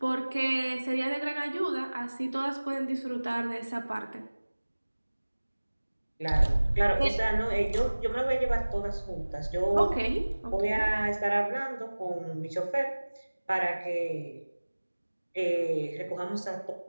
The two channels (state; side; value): inverted; both; correlation -1.00